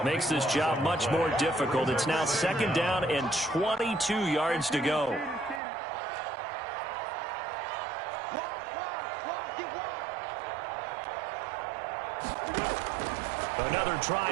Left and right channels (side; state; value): left; drops out; at 5.6 s